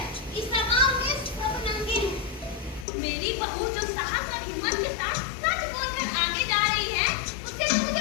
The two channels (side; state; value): right; drops out; at 2.9 s